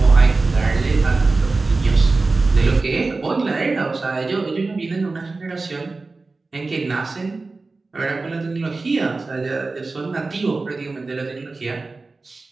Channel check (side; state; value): left; quieter; 3.6 dB